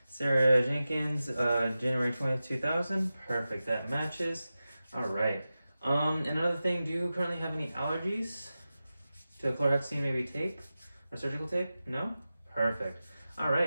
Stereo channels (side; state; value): both; inverted; correlation -0.94